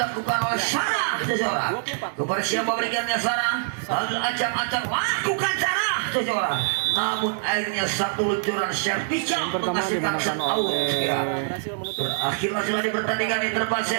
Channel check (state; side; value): silent; left; digital silence